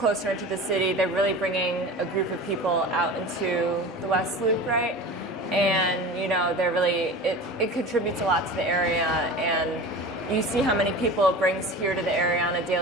into the city, they're really bringing a group of people out into the West Loop, right? And, they're really, it contributes a lot to the area, and you see how many people it brings here to the area on a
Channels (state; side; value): normal; both; correlation 0.34